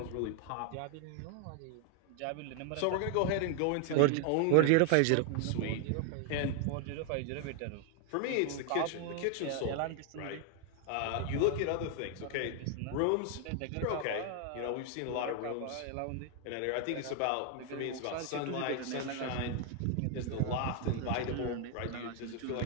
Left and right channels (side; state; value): both; different; correlation 0.00